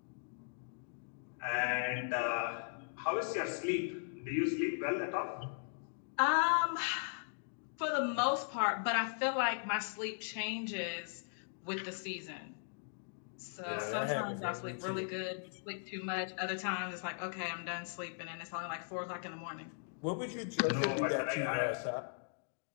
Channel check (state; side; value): silent; right; digital silence